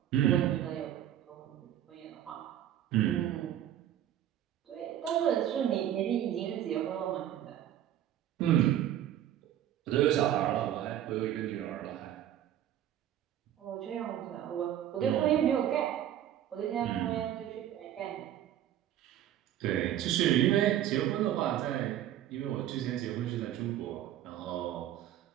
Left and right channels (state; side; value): quieter; left; 11.6 dB